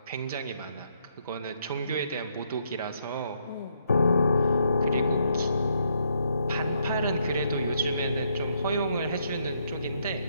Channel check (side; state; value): both; inverted; correlation -0.74